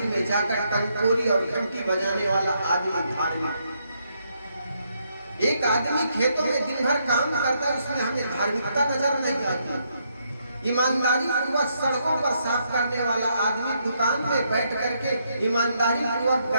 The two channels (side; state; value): both; inverted; correlation -0.76